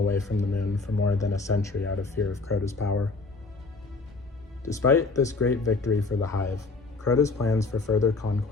from the moon for more than a century out of fear of CROTA's power. Despite this great victory for the Hive, CROTA's plans for further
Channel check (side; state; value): right; quieter; 3.8 dB